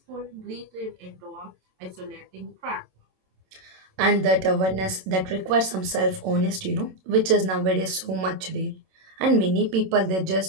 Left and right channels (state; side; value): late; left; 27 ms